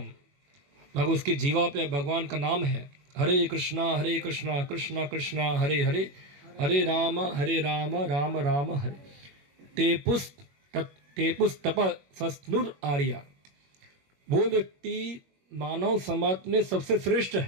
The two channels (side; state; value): left; late; 21 ms